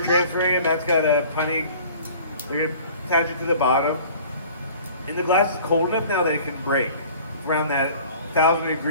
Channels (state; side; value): inverted; both; correlation -0.48